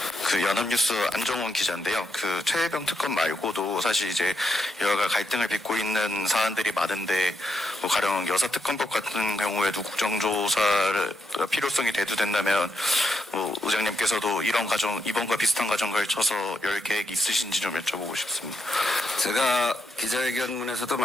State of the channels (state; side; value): normal; both; correlation 0.81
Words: 그 연합뉴스 안정훈 기자인데요. 그 최혜병 특검 말고도 사실 이제 여야가 갈등을 빚고 있는 사안들이 많은데 뭐 가령 여사특검법 같은 경우에도 국정조사를 필요성이 대두된다면 뭐 의장님께서도 이런 과정 이번과 비슷한 과정 걸쳐서 열 계획이 있으신지 좀 여쭤보고 싶습니다. 제가 기자회견문에서도